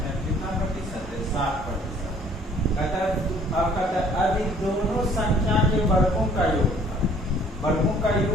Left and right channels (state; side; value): normal; both; correlation 0.57